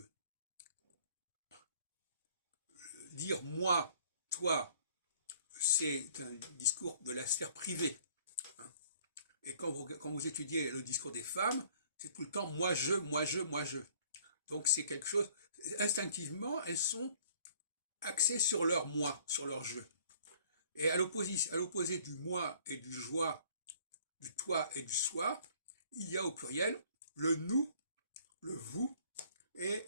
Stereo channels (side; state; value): both; inverted; correlation -0.56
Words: Dire moi, toi, c'est un discours de la sphère privée. Et quand vous étudiez le discours des femmes, c'est tout le temps moi, je, moi, je, moi, je. Donc c'est quelque chose, instinctivement, elles sont axées sur leur moi, sur leur je. Et à l'opposé du moi et du joie, du toi et du soi, il y a au pluriel le nous, le vous et